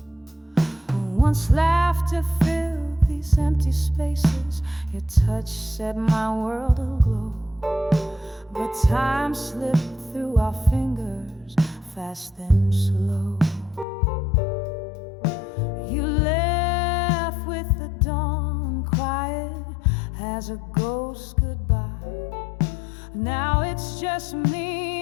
Once laughter filled these empty spaces, your touch set my world aglow. But time slipped through our fingers, fast then slow. You left with the dawn, quiet as a ghost goodbye. Now it's just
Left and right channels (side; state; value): right; drops out; at 13.9 s